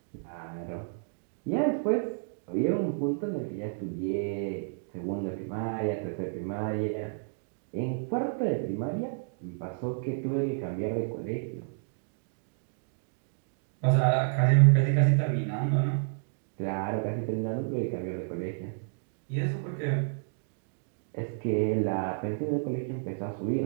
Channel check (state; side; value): silent; left; digital silence